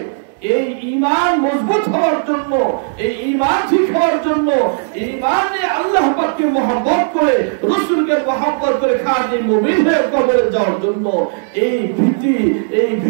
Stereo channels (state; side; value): silent; left; 69 dB below the other